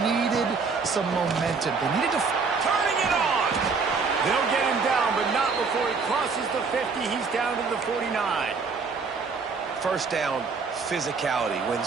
needed some momentum. They needed to... Turning it on! They'll get him down, but not before he crosses the 50. He's down to the 49. First down, physicality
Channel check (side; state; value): left; quieter; 4.9 dB